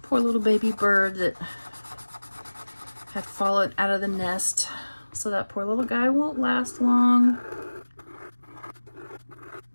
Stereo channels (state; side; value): inverted; both; correlation -1.00